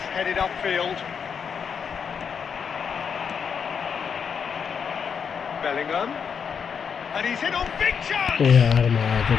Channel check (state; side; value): quieter; right; 6.8 dB